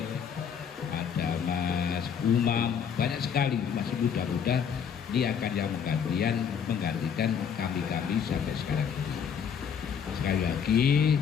ada Mas Umam, banyak sekali masih muda-muda. Ini akan yang menggantikan kami sampai sekarang ini. Sekali lagi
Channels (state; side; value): quieter; right; 7.4 dB